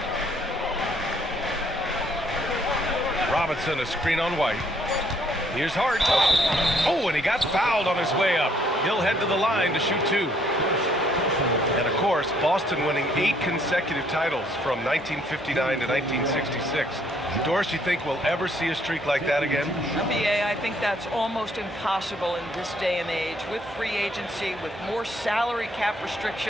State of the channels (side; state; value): both; normal; correlation 0.66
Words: Robinson, a screen on White. Here's Hart. Oh, and he got fouled on his way up. He'll head to the line to shoot 2. And of course, Boston winning 8 consecutive titles from 1959 to 1966. Doris, you think we'll ever see a streak like that again? BA, I think that's almost impossible in this day and age. With free agency, with more salary cap